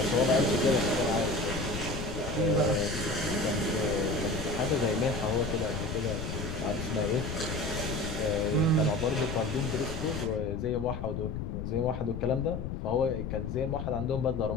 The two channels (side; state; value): left; noise; rumble, 5 dB below the sound